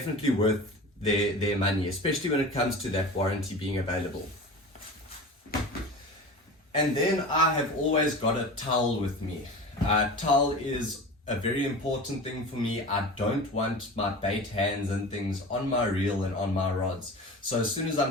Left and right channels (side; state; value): both; normal; correlation 0.33